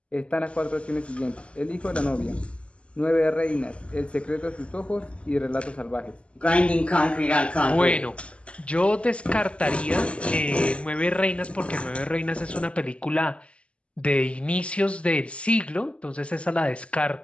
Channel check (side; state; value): right; late; 0.058 ms